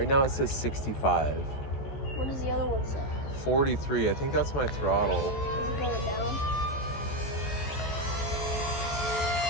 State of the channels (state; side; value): late; right; 14 ms